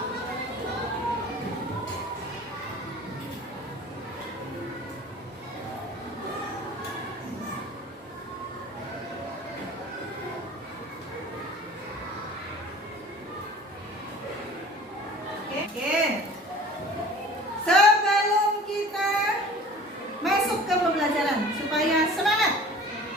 Oke. Sebelum kita masuk ke pembelajaran, supaya semangat,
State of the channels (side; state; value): both; normal; correlation 0.44